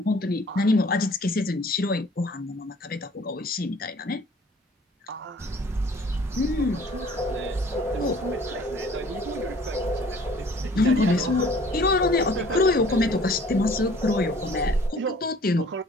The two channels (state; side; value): normal; both; correlation 0.53